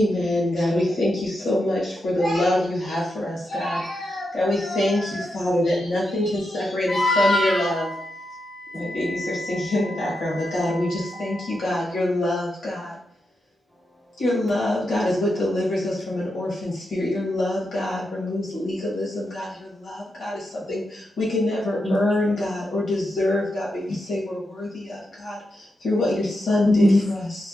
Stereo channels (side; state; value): both; normal; correlation 0.86